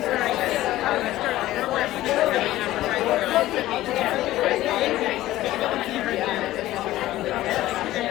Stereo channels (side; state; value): right; quieter; 15.5 dB